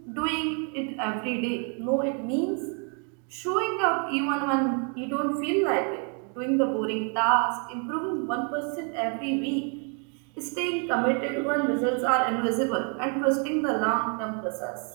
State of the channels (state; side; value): quieter; left; 39.4 dB